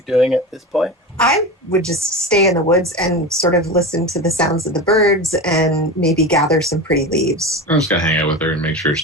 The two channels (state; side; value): normal; both; correlation 0.25